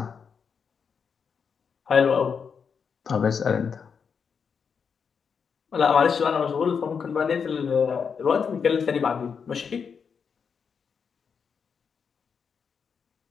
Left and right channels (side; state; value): right; quieter; 6.3 dB